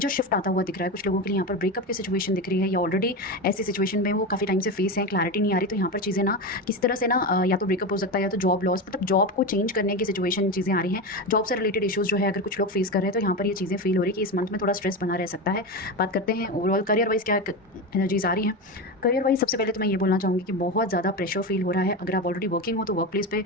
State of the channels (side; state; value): both; normal; correlation 0.19